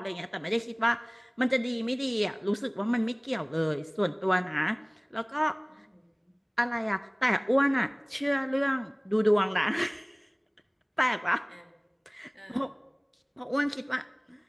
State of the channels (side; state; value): both; identical; correlation 1.00